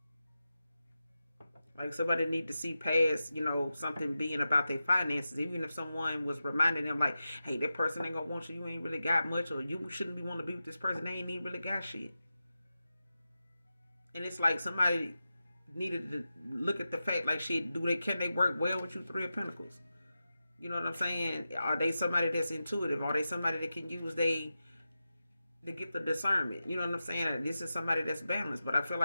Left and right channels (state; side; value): inverted; both; correlation -0.92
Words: like somebody need to see past, something being about their finances. Even if someone was reminding them like, hey, that person ain't gonna want you, you ain't really got much, or you shouldn't be want to be with this person, they ain't even really got shit. And it's like somebody needed to look at the fact like shit, can they work well with you, Three of Pentacles? You know what I'm saying? Are they somebody that's intuitive? Are they somebody that can use they to get the discernment? You know what I'm saying? This is somebody that's balanced. But I feel